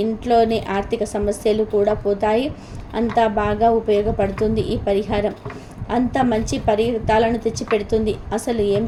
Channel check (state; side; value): identical; both; correlation 1.00